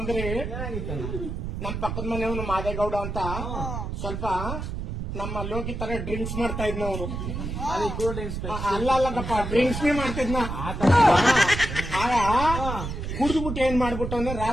ಅಂದ್ರೆ, ನಮ್ ಪಕ್ಕದ ಮನೆಯವನು ಮಾದೇಗೌಡ ಅಂತ ಸ್ವಲ್ಪ ನಮ್ಮ ಲೋಕಿ ತರ ಡ್ರಿಂಕ್ಸ್ ಮಾಡ್ತಾ ಇದ್ನ ಅವನು. ಅಲ್ಲಪ್ಪ, ಡ್ರಿಂಕ್ಸ್ ಮಾಡ್ತಿದ್ನ. ಆಗ ಕುಡಿದ್ಬಿಟ್ಟು ಏನ್ ಮಾಡ್ಬಿಟ್ಟವನೆ,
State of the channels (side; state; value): right; noise; rumble, 5 dB below the sound